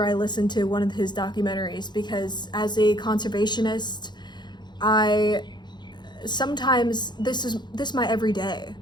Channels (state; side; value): late; right; 0.21 ms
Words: I listen to one of his documentaries, because as a conservationist, sometimes this is my everyday.